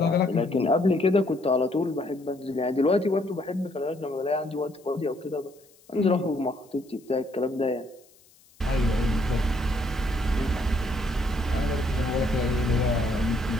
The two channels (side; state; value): left; noise; hiss, 29 dB below the sound